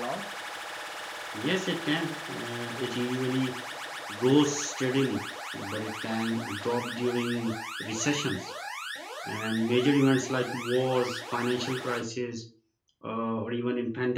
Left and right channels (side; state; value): both; identical; correlation 1.00